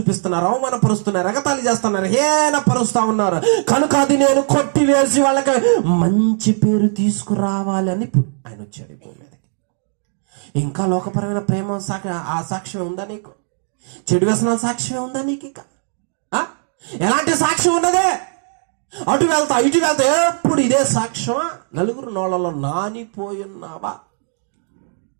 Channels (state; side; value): silent; left; 67 dB below the other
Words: అవమానపరుస్తున్నారు, ఎగతాళి చేస్తున్నారు, హేళనపరుస్తా ఉన్నారు. కనుక అది నేను కొట్టివేసి వాళ్ళకి మంచి పేరు తీసుకురావాలి అని ఆయన వచ్చాడు భూమి మీదకి. ఇంకా లోకపరమైన ప్రేమ ఆ సాక్ష్యం ఉందా నీకు? చెడు వ్యసనాల సాక్ష్యం ఉందా నీకు? ఇంకా ఎలాంటి సాక్ష్యం ఉన్నదే? అటు వెళ్తా ఇటు వెళ్తా ఎప్పుడు ఇదే సాక్ష్యమా? నలుగురు నోళ్ళలో నానిపోయున్నావా?